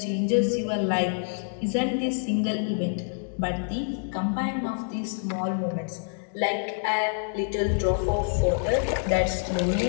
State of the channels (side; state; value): right; silent; digital silence